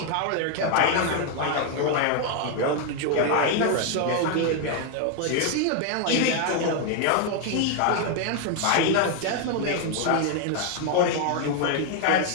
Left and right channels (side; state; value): both; different; correlation 0.00